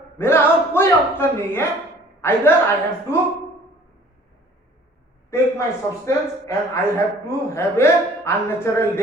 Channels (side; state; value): both; normal; correlation 0.52